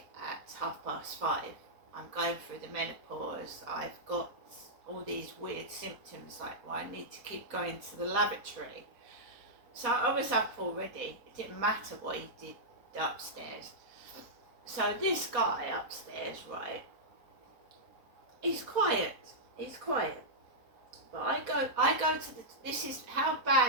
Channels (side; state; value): left; late; 4.1 ms